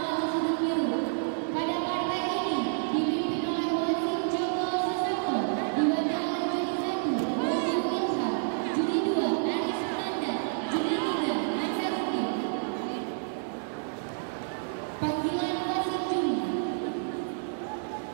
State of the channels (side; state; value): left; silent; digital silence